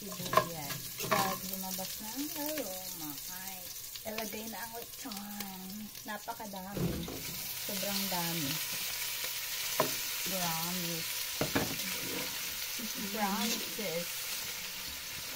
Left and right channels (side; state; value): both; identical; correlation 1.00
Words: pag lumabas na ang aroma, ay ilagay na ang lechon. Napakadami, sobrang dami. Promises.